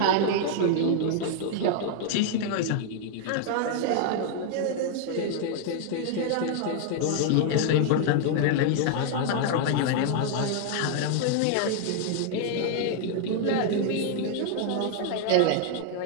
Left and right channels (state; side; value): different; both; correlation 0.00